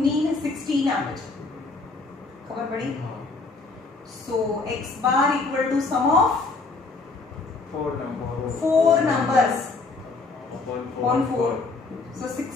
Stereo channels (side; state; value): right; quieter; 3.8 dB